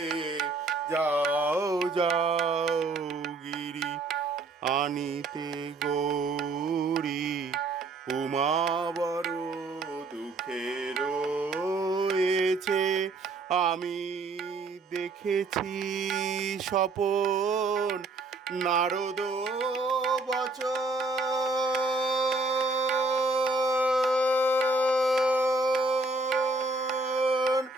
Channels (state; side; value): quieter; left; 3.4 dB